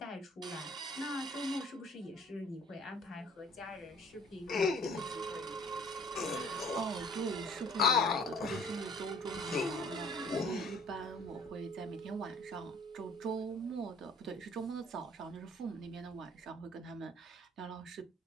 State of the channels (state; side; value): normal; both; correlation 0.54